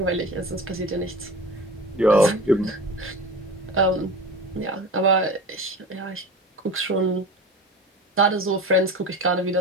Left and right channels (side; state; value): both; normal; correlation 0.33